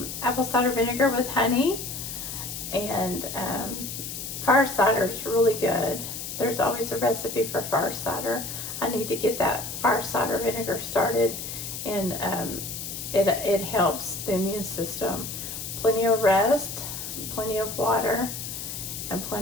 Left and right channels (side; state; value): left; noise; hiss, 7 dB below the sound